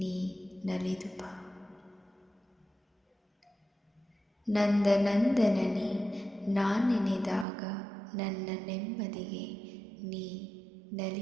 ನಲಿದು ಬಾ. ನಂದನಂದನನೇ ನಾನೆನೆದಾಗ ನನ್ನ ನೆಮ್ಮದಿಗೆ ನೀ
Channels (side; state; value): left; drops out; at 7.5 s